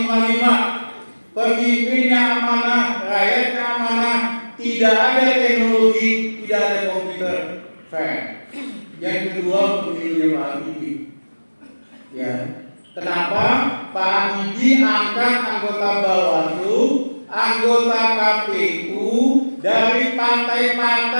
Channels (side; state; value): both; inverted; correlation -1.00